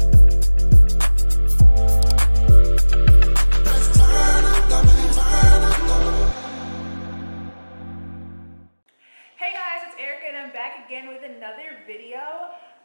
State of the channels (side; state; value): both; inverted; correlation -1.00